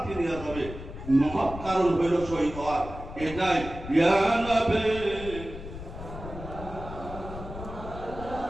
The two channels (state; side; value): noise; left; rumble, 11 dB below the sound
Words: নিয়ে যাবে। মহৎ কারণ হইল শহীদ হওয়ার। এটাই ইয়া নবী